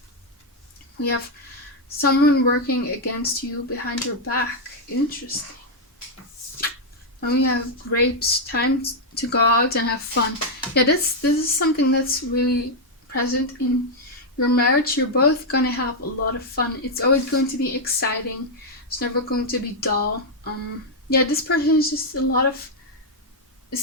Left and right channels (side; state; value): both; normal; correlation -0.01